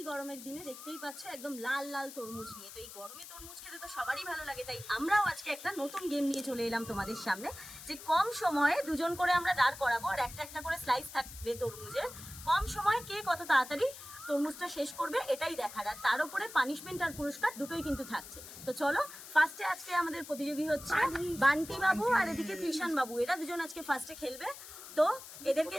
গরমের দিনে দেখতেই পাচ্ছ একদম লাল লাল তরমুজ নিয়ে। তো এই গরমে তরমুজ খেতে তো সবারই ভালো লাগে, তাই আমরাও আজকে একটা নতুন গেম নিয়ে চলে এলাম তোমাদের সামনে, যে কম সময়ে দুজন করে আমরা দাঁড় করাবো আর একটা একটা করে স্লাইস থাকবে তরমুজের। কম সময়ে কে কত তাড়াতাড়ি তরমুজটা শেষ করবে এটাই দেখার, আর তার উপরে পানিশমেন্ট আর পুরস্কার দুটোই কিন্তু থাকছে। তো চলো, ফার্স্টে আজকে আমাদের প্রতিযোগী হচ্ছে বান্টি বাবু আর এদিকে কৃষাণ বাবু, এরা দুজন আজকে ফার্স্টে খেলবে। তো এদেরকে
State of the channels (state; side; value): noise; left; hiss, 14 dB below the sound